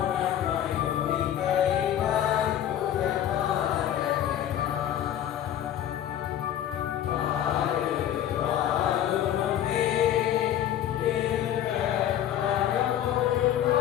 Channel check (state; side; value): quieter; right; 11.0 dB